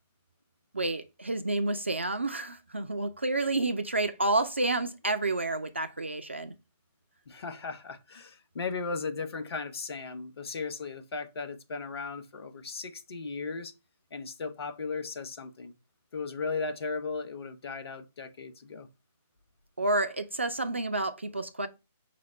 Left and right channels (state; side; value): inverted; both; correlation -0.55